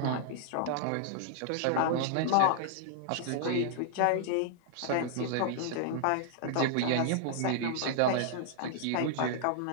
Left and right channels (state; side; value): different; both; correlation -0.01